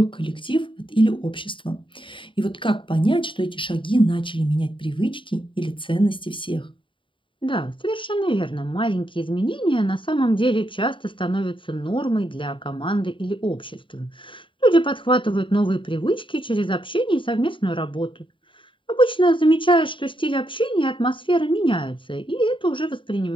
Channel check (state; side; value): late; right; 0.25 ms